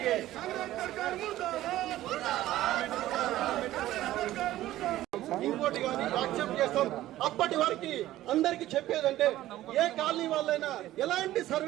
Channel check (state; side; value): quieter; left; 14.7 dB